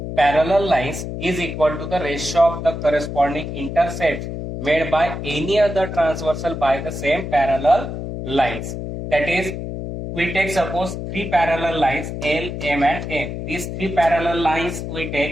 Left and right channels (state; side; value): noise; left; hum, 6 dB below the sound